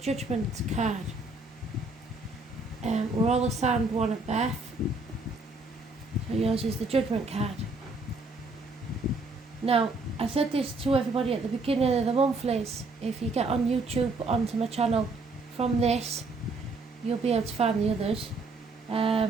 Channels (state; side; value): quieter; left; 3.3 dB